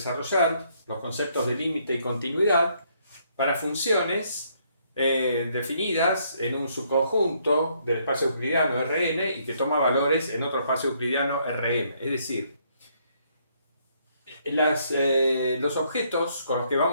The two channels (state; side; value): inverted; both; correlation -0.70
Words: los conceptos de límite y continuidad para funciones definidas en un subconjunto del espacio euclidiano Rn y que toma valores en otro espacio euclidiano Rm. Es decir, los objetos con los que